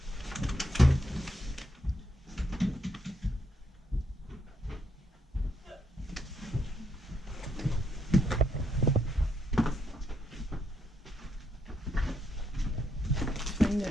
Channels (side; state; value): both; normal; correlation 0.77